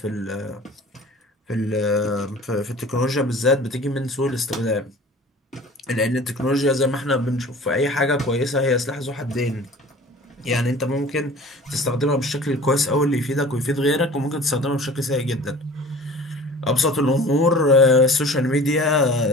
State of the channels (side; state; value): both; normal; correlation 0.44